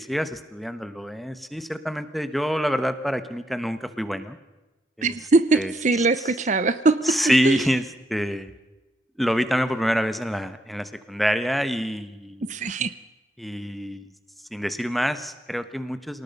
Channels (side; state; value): both; normal; correlation 0.77